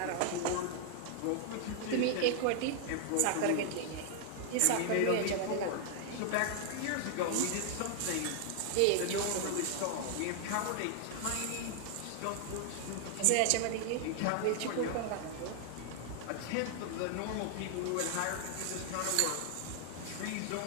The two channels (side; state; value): both; different; correlation 0.00